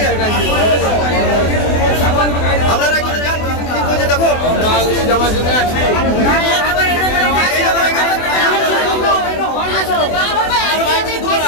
আপনারা একটু যান, কি করছে দেখো।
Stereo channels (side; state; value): right; late; 24 ms